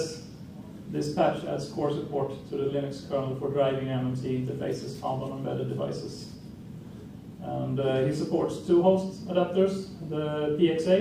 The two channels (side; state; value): both; identical; correlation 1.00